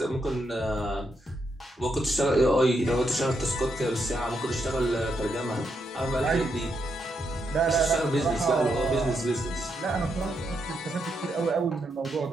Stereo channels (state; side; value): normal; both; correlation 0.80